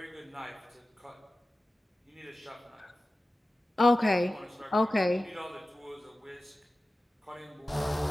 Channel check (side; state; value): both; normal; correlation 0.95